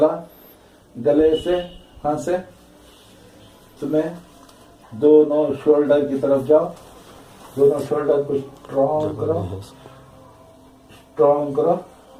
गले से, हाथ से तुम्हें दोनों शोल्डर की तरफ जाओ, दोनों शोल्डर को स्ट्रॉन्ग करो,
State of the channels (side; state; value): both; identical; correlation 1.00